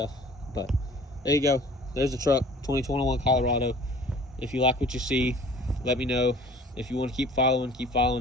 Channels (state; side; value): normal; both; correlation 0.49